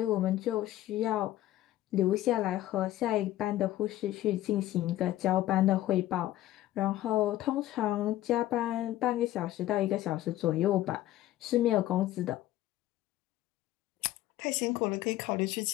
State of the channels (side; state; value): right; quieter; 14.5 dB